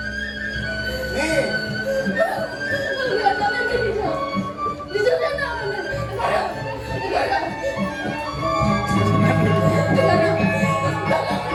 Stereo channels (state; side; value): identical; both; correlation 1.00